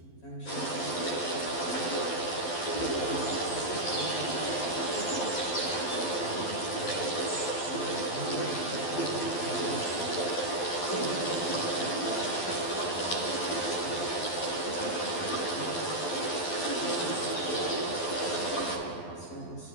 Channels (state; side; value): late; right; 12 ms